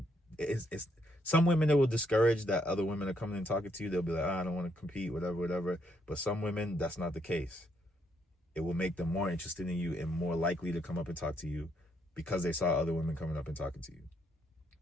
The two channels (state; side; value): normal; both; correlation 0.74